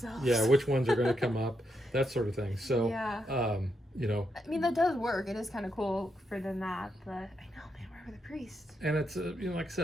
Yeah, which ones are going to come up, that sort of thing. So, yeah. I mean, that does work. It is kind of cool for them that, but I know, man, where were the priests? And it's, like I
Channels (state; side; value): normal; both; correlation 0.81